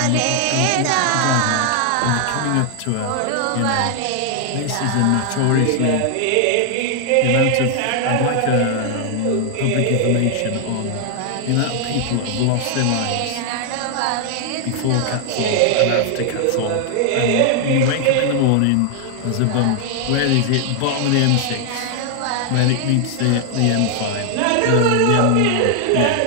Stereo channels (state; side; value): different; both; correlation 0.00